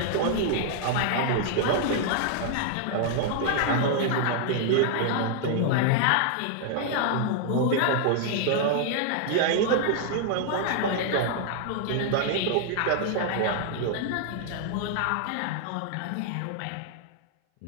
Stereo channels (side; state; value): both; different; correlation -0.01